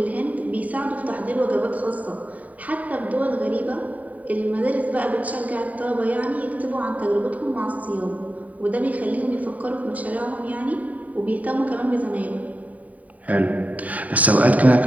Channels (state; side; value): late; left; 0.071 ms